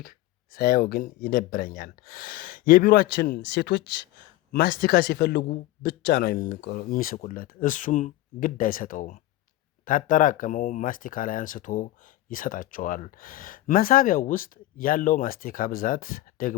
ሳየው ግን ይደብረኛል። የቢሮአችን ሴቶች ማስቲካ ሲፈልጉ ብቻ ነው የሚስቁለት። እሱም ግድ አይሰጠውም። ታጠራቀመው ማስቲካ ላይ አንስቶ ይሰጣቸዋል። መሳቢያው ውስጥ ያለው ማስቲካ ብዛት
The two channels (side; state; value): right; quieter; 16.0 dB